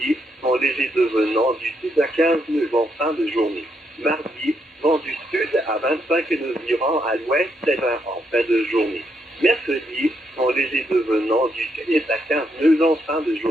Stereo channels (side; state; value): both; normal; correlation 0.78